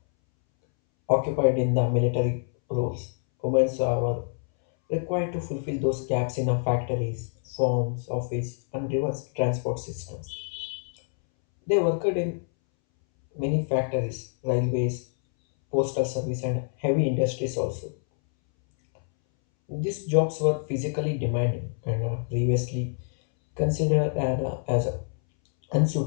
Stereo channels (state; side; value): silent; right; 61 dB below the other